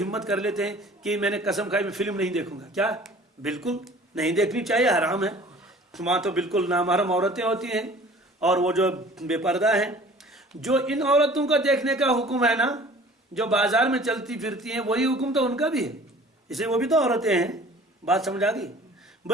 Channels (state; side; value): normal; both; correlation 0.48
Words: ہمت کر لیتے ہیں کہ میں نے قسم کھائی میں فلم نہیں دیکھوں گا. کیا؟ بالکل نہیں دیکھنی چاہیے، حرام ہے. وہاں تو بالکل نامحرم عورتیں ہوتی ہیں اور وہ جو بے پردہ ہیں. جو ان عورتوں کا دیکھنے کا حکم ہے نا، جو بازار میں چلتی پھرتی ہیں، وہی حکم تو ان کا بھی ہے. اسے وہ بھی تو عورتیں ہیں. بات سمجھ آ گئی؟